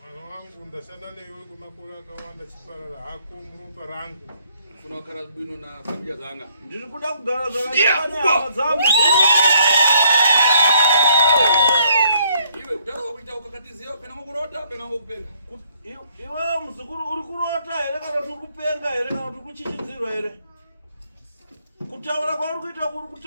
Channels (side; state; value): both; inverted; correlation -0.66